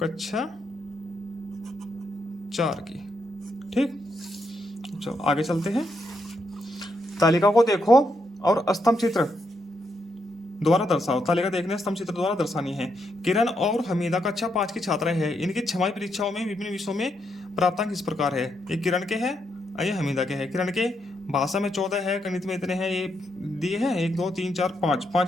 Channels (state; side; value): normal; both; correlation 0.79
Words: कक्षा 4 की। ठीक। चलो आगे चलते हैं। तालिका को देखो और स्तंभ चित्र द्वारा दर्शाओ। तालिका देखने स्तंभ चित्र द्वारा दर्शानी है। किरण और हमीदा कक्षा 5 की छात्रा है। इनकी छमाही परीक्षाओं में विभिन्न विषयों में प्राप्तांक इस प्रकार है। ये किरण के हैं और ये हमीदा के हैं। किरण के भाषा में 14 है, गणित में इतने हैं, ये दिए हैं 1 2 3 4 5